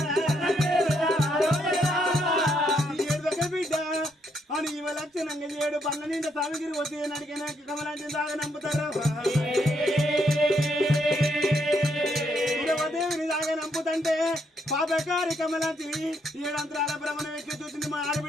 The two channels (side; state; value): both; normal; correlation 0.75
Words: బిడ్డ అని ఇవ లక్షణంగా 7 పండ్ల నిండా సామిగిరి వచ్చి నడికిన కమలాంటి దాగా నంపుతారు దేవిని దాగా నంపుతంటే పాపకారి కమలాంటిని 7 అంతరాల భ్రమణం ఎక్కి చూసింది మా